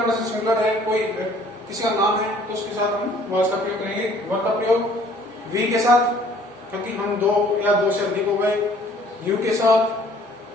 पर्सन सिंगुलर है, कोई किसी का नाम है, तो उसके साथ हम वाज का प्रयोग करेंगे। वर्ब का प्रयोग वी के साथ, क्योंकि हम दो या दो से अधिक हो गए। यू के साथ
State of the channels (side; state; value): both; normal; correlation 0.56